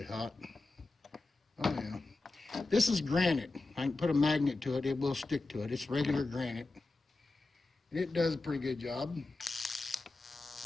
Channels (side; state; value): right; quieter; 3.3 dB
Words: hot. Oh yeah. This is granite. I can put a magnet to it, it will stick to it. It's regular granite. It does a pretty good job.